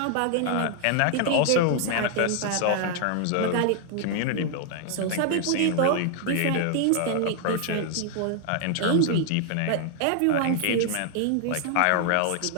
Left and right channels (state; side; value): different; both; correlation 0.00